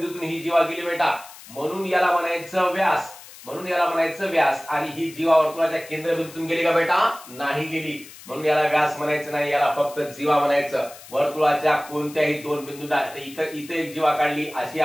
ही जीवा गेली बेटा, म्हणून याला म्हणायचं व्यास. म्हणून याला म्हणायचं व्यास. आणि ही जीवा वर्तुळाच्या केंद्रबिंदूतून गेली का बेटा, नाही गेली, म्हणून याला व्यास म्हणायचं नाही, याला फक्त जीवा म्हणायचं. वर्तुळाच्या कोणत्याही दोन बिंदूंना इथे एक जीवा काढली, अशी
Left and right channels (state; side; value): noise; left; hiss, 18 dB below the sound